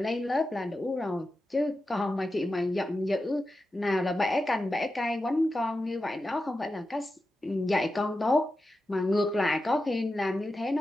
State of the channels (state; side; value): normal; both; correlation 0.91